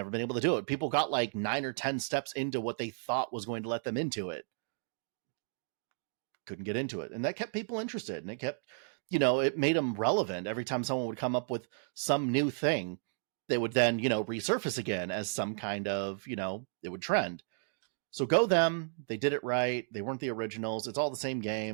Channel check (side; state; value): left; silent; digital silence